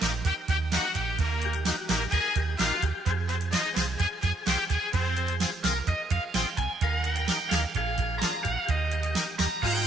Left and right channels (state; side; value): normal; both; correlation 0.74